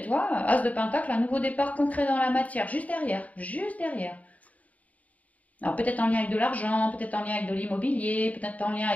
tu vois, As de Pentacle, un nouveau départ concret dans la matière, juste derrière, juste derrière. Alors peut-être en lien avec de l'argent, peut-être en lien avec de l'immobilier, peut-être en lien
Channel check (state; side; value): late; right; 0.071 ms